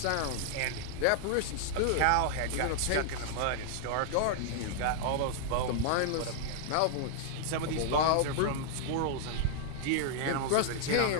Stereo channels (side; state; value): both; different; correlation -0.01